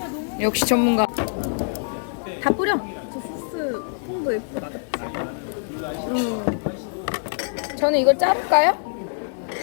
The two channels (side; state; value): right; silent; digital silence